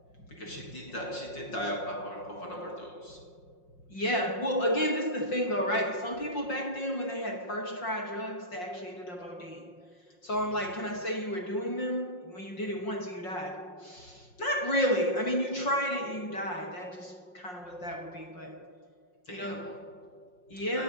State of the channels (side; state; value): right; late; 5.6 ms